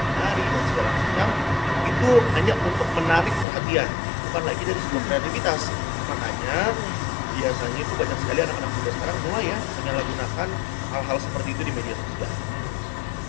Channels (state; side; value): drops out; right; at 3.5 s